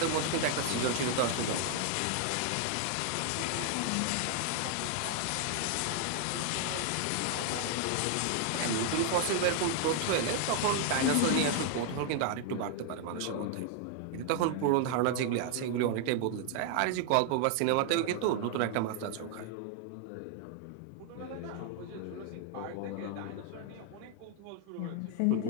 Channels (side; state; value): both; different; correlation 0.00